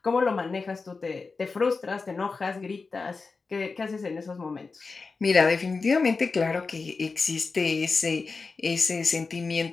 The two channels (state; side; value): quieter; right; 4.3 dB